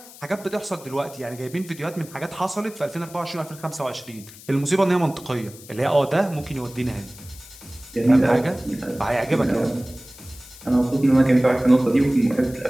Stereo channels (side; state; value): left; noise; hiss, 19 dB below the sound